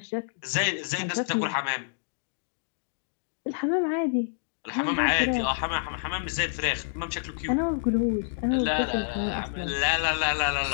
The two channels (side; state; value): right; silent; digital silence